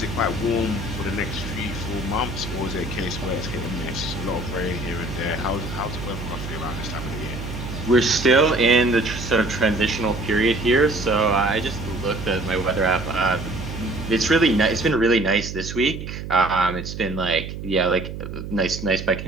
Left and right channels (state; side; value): noise; right; hum, 8 dB below the sound